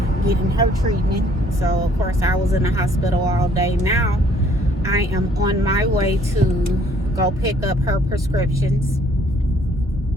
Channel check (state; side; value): normal; both; correlation 0.61